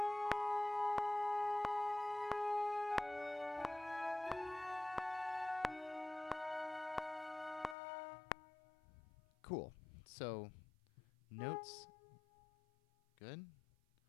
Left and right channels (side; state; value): right; drops out; at 7.8 s